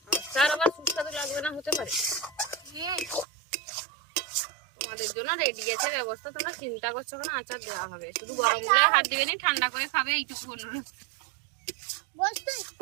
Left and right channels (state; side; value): drops out; left; at 3.2 s